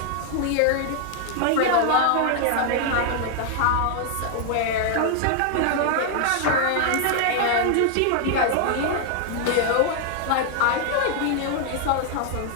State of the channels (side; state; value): both; different; correlation 0.00